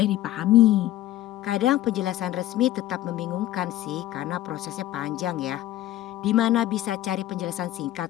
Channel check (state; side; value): quieter; right; 14.2 dB